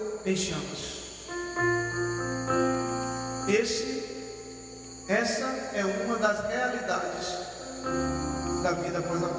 em chamas. Essa é uma das realidades da vida após a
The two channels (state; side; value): identical; both; correlation 1.00